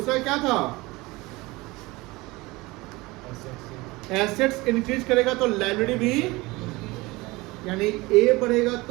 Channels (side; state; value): left; quieter; 22.1 dB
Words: क्या था, एसेट्स इंक्रीज करेगा तो लायबिलिटी भी, यानी ए बढ़ेगा